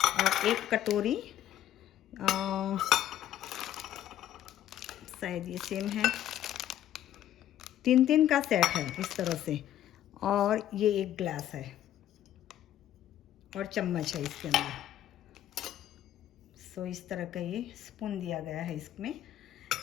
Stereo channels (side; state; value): right; quieter; 12.0 dB